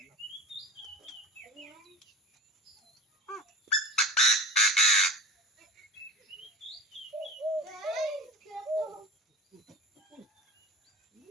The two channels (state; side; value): normal; both; correlation 0.32